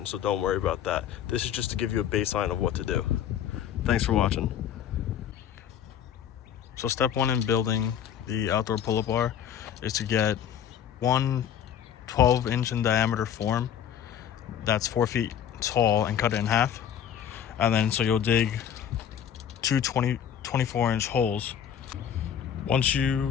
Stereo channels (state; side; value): quieter; right; 9.3 dB